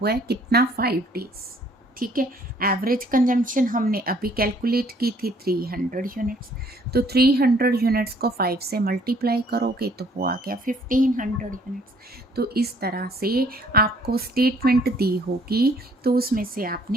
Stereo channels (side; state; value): both; normal; correlation 0.61